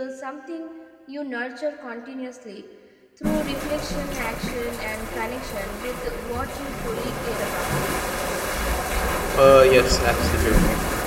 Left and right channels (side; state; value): both; identical; correlation 1.00